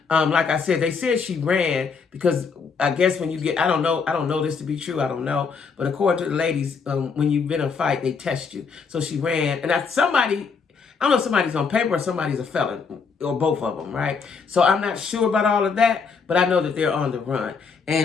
Like I said, they said she ran because I guess when you get, I don't know this to be true, I don't know. But according to the ladies, when you've been in a fight, they test you. So she ran. And I don't know if somebody's on paper or somebody's a felon, or both of them, right? So I'm not sure about all of that, but I know that they're on the run.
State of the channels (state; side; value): quieter; right; 5.4 dB